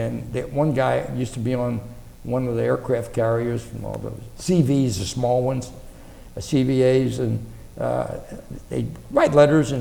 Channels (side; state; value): both; identical; correlation 1.00